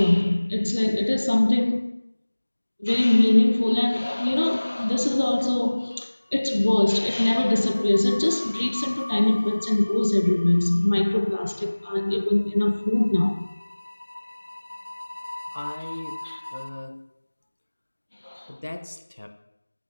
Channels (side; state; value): both; inverted; correlation -1.00